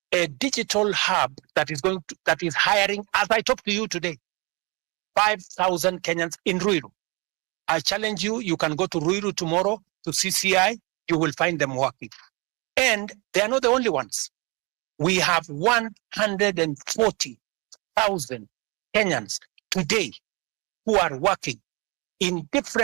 a digital hub that is hiring, as I talk to you today, 5,000 Kenyans in Ruto. I challenge you, you can go to Ruto tomorrow to CCI, you will find them working. And they are not the only ones. We have 140,000 Kenyans today who are working in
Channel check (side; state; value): left; quieter; 28.4 dB